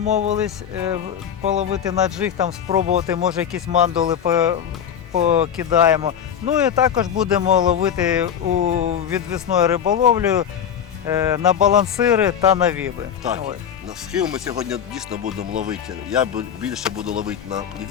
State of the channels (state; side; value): quieter; right; 8.7 dB